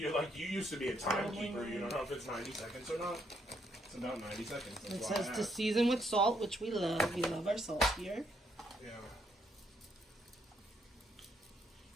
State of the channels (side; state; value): both; normal; correlation 0.73